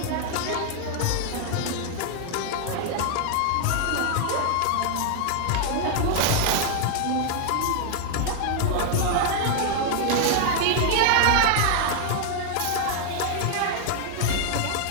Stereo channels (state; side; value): different; both; correlation 0.00